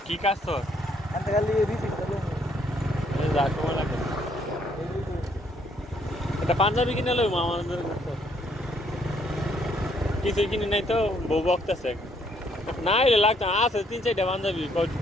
কি কাজ তোর এটা পাঞ্জাবি কিনে লইব আমাদের কিছু কিনে নাই তো বউ বকতেছে না এলে লাগতো আছে 3-4টা পাঞ্জাবি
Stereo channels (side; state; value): both; normal; correlation 0.68